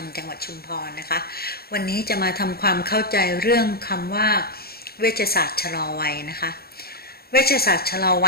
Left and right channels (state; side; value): late; right; 0.45 ms